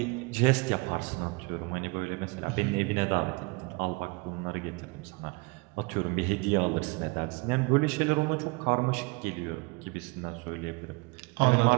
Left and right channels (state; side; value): quieter; left; 27.7 dB